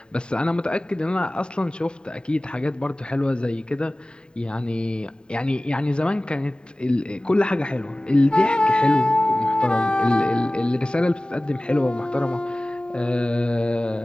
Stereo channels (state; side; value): late; right; 0.049 ms